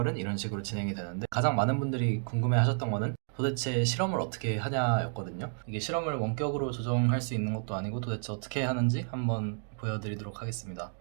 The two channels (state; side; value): silent; left; 57 dB below the other